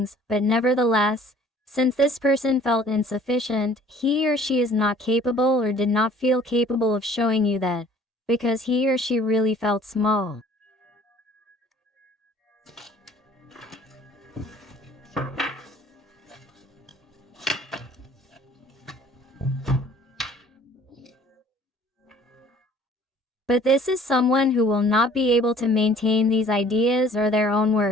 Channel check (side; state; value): both; normal; correlation 0.53